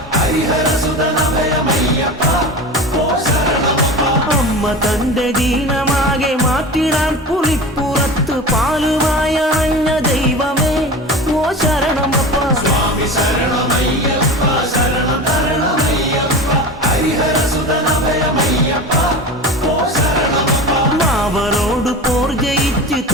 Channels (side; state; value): both; normal; correlation 0.30